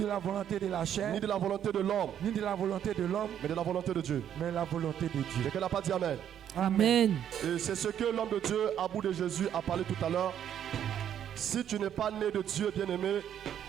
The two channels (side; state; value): left; quieter; 9.8 dB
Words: la volonté de la chair, ni de la volonté de l'homme, ni de la volonté de l'homme, mais de la volonté de Dieu. mais la volonté de Dieu. Quelqu'un n'a pas dit Amen. Amen. Et c'est ce que l'homme de Dieu, à bout de Jésus, a parlé tout à l'heure. Si tu n'es pas né de Dieu, bien-aimé,